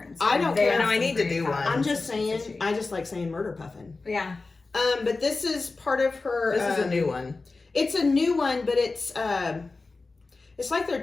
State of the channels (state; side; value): quieter; right; 3.7 dB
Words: I don't They care. have No, I some need to great do one. patterns. I'm just saying, I just like saying Murder Puffin. Yeah. But this is part of her. This is a new one. It's a new one, but it's like their